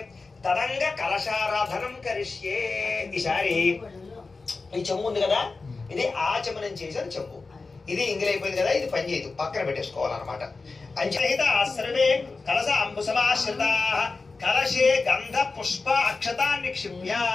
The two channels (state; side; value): quieter; right; 4.0 dB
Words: తదంగ కలశారాధనం కరిష్యే. ఈసారి ఈ చెంబు ఉంది కదా, ఇది ఆచమనం చేసిన చెంబు. ఇది ఇంగిలైపోయింది కదా, ఇది పని చేయదు, పక్కన పెట్టేసుకోవాలన్నమాట. అంచహిత సర్వే కలశ అంబుసమాశ్రితా కలశే గంధ పుష్ప అక్షతాన్ని నిక్షిప్య.